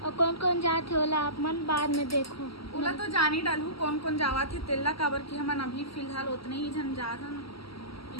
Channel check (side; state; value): right; late; 0.75 ms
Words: कौन कौन जाते होला आप मन बाद में देखो। ओला तो जान ही डालू कौन कौन जावा थे तेला काबर की हमन अभी फिलहाल उतने ही जन जात हन।